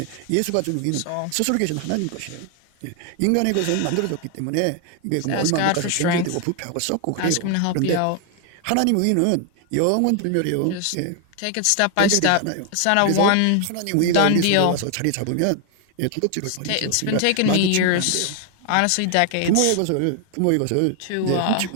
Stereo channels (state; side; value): different; both; correlation 0.00